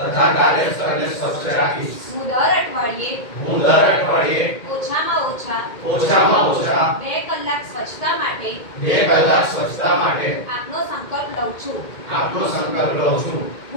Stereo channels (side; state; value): right; late; 2.1 ms